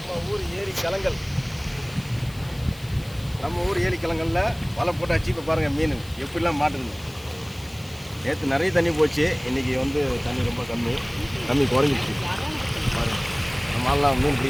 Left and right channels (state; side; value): noise; left; hiss, 21 dB below the sound